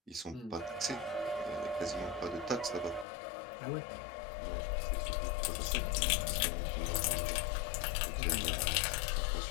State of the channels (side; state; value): right; drops out; at 3.1 s